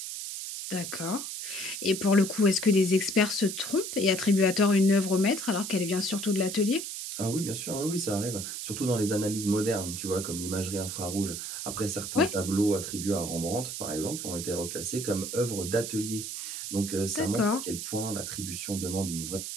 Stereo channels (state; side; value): noise; right; hiss, 6 dB below the sound